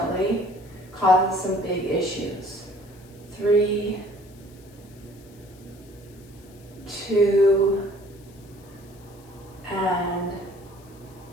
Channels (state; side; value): noise; left; hiss, 27 dB below the sound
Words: causes some big issues. 3, 2, and